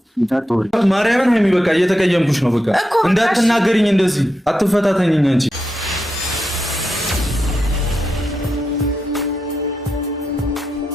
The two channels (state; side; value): normal; both; correlation 0.87